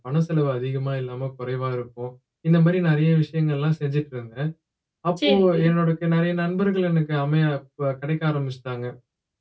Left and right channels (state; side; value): identical; both; correlation 1.00